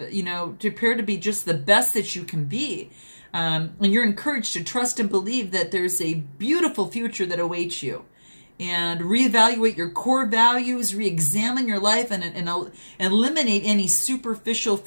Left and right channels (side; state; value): both; inverted; correlation -1.00